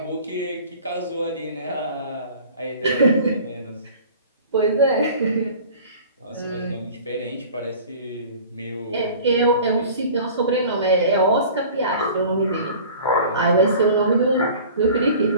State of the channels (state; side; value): inverted; both; correlation -0.43